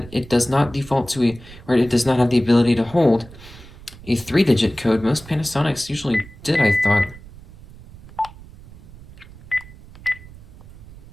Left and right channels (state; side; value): noise; right; rumble, 19 dB below the sound